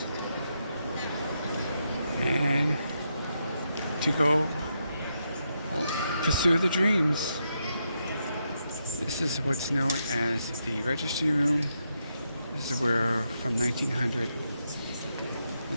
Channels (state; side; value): inverted; both; correlation -0.82